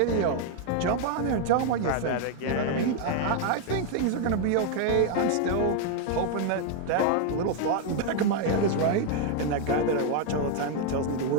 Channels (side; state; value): both; different; correlation 0.00